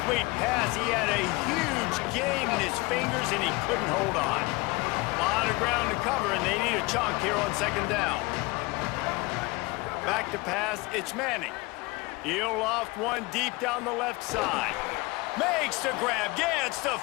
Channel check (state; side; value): quieter; right; 24.2 dB